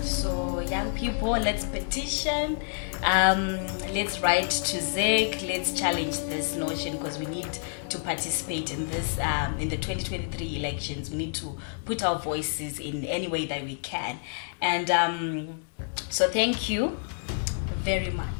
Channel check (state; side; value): silent; right; digital silence